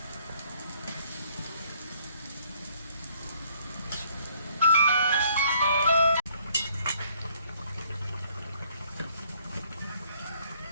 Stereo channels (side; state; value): both; inverted; correlation -0.64